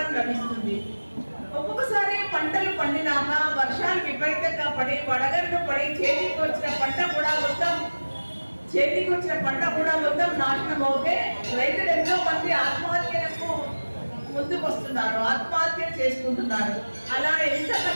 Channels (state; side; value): inverted; both; correlation -1.00